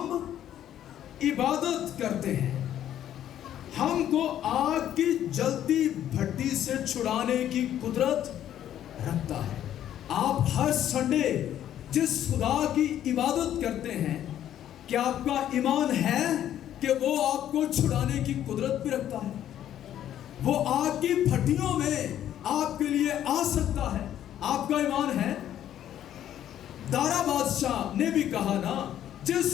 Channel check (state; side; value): quieter; right; 11.2 dB